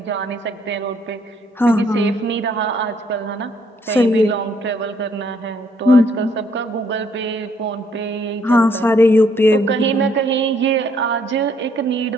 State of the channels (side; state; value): both; normal; correlation 0.68